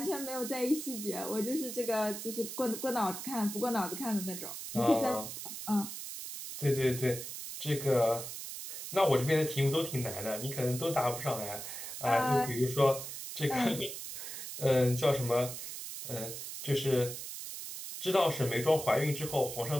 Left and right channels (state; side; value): noise; right; hiss, 8 dB below the sound